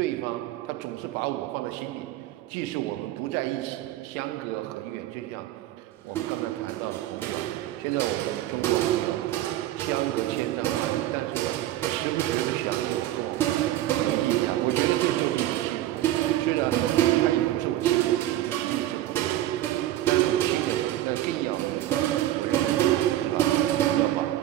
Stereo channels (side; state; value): left; quieter; 14.0 dB